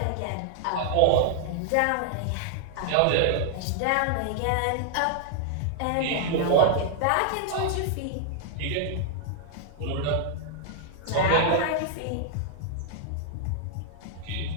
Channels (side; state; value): both; different; correlation -0.01